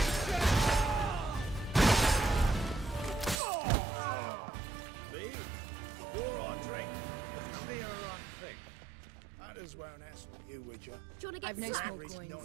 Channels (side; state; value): left; drops out; at 3.4 s